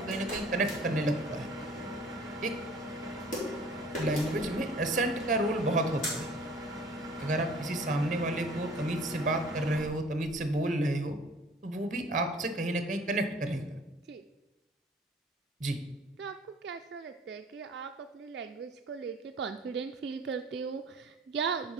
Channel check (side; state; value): both; normal; correlation 0.51